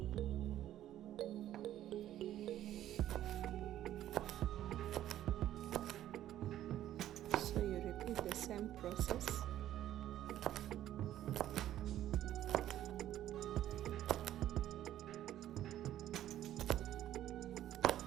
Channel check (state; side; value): quieter; left; 12.5 dB